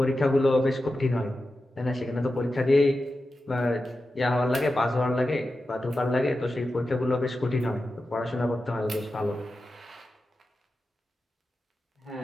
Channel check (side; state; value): both; normal; correlation 0.92